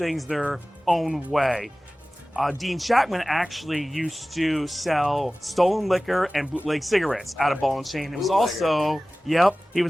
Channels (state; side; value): normal; both; correlation 0.97